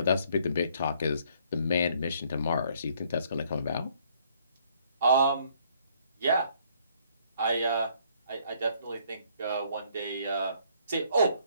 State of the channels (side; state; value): both; inverted; correlation -0.64